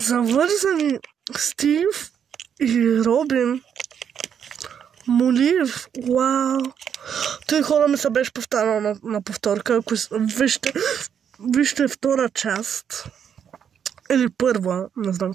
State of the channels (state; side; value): quieter; left; 8.1 dB